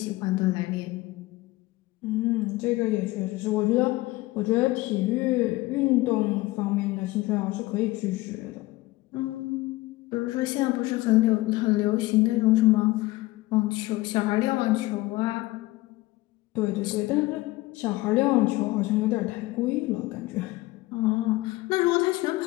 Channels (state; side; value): quieter; right; 19.4 dB